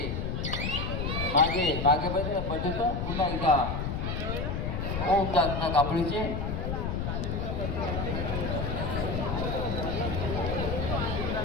मागे मागे पडतो. पुन्हा एकदा ओम दाखना कापडीचे.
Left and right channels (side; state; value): left; noise; rumble, 2 dB below the sound